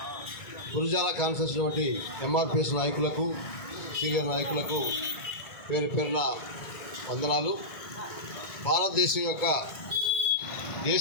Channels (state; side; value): late; right; 1.9 ms